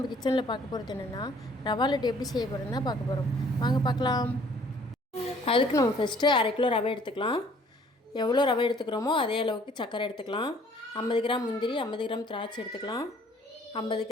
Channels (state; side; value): normal; both; correlation 0.58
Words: கிச்சனில் பார்க்க போகிறது என்னென்னா ரவா லட்டு எப்படி செய்ய போகிறோன்னு தான் பார்க்க போகிறோம். வாங்க பார்க்கலாம். அதுக்கு நம்ம ஃபஸ்ட்டு 1/2 கிலோ ரவை எடுத்துக்கலாம். எவ்வளோ ரவை எடுத்துக்கிறோமோ அதே அளவுக்கு சர்க்கரை எடுத்துக்கலாம். 50 கிராம் முந்திரி, 50 கிராம் திராட்சை எடுத்துக்கலாம். 50